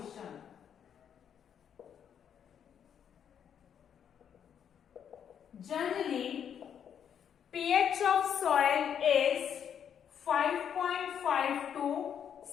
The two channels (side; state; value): right; quieter; 8.5 dB